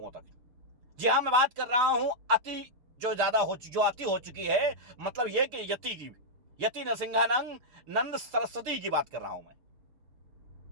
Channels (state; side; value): late; left; 6.7 ms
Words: तक। जी हां, मैं बात कर रहा हूं अति जो अति हो चुकी है, मतलब यह कि यति नरसिंहानंद नंद सरस्वती की बात कर रहा हूं मैं।